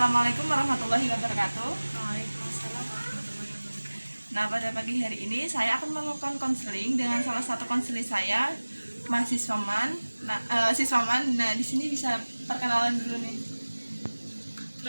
warahmatullahi wabarakatuh. Waalaikumsalam warahmatullahi wabarakatuh. Nah, pada pagi hari ini saya akan melakukan konseling dengan salah satu konseling saya, mahasiswaman. Siswaman. Nah, di sini bisa perkenalan dulu nih.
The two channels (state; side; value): inverted; both; correlation -1.00